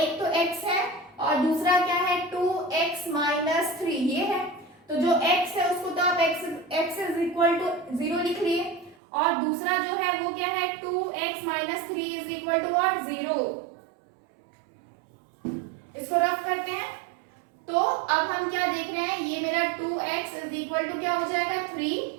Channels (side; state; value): left; drops out; at 9.0 s